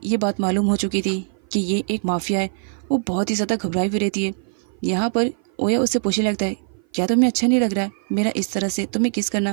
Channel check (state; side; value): silent; left; 56 dB below the other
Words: ये बात मालूम हो चुकी थी कि ये एक माफिया है। वो बहुत ही ज़्यादा घबराई हुई रहती है। यहाँ पर ओया उससे पूछने लगता है, क्या तुम्हें अच्छा नहीं लग रहा है मेरा इस तरह से तुम्हें किस